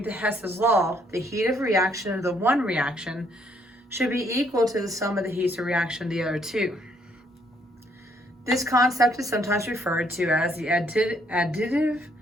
to Hess's law, the heat of reaction of the one reaction should be equal to the sum of the heats of reaction of the other 2. This concept is sometimes referred to as the additive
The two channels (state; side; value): normal; both; correlation 0.68